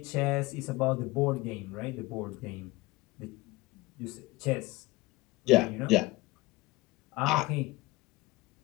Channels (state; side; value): quieter; right; 20.6 dB